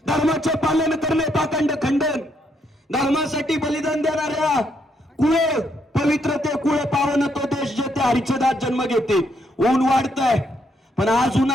धर्माचे पालन करणे पाखंड खंडन धर्मासाठी बलिदान देणाऱ्या कुळे पवित्र ते कुळे पावन तो देश जेथे हरिचदात जन्म घेते ऊन वाढतंय पण आज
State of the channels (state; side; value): normal; both; correlation 0.75